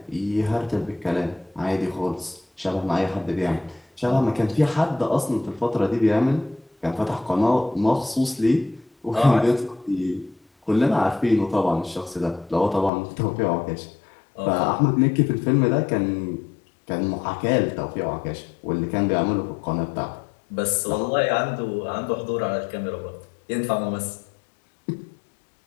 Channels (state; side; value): drops out; right; at 12.9 s